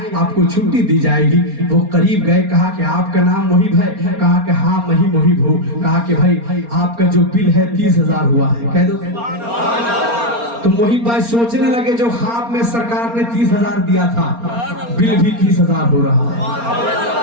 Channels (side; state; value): left; late; 4.3 ms